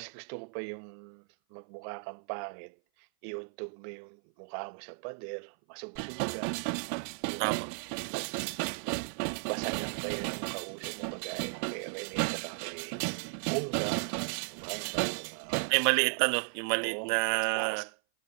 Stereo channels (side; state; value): left; silent; 55 dB below the other